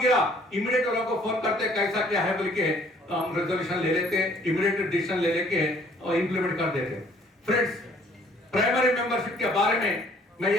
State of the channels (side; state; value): both; normal; correlation 0.59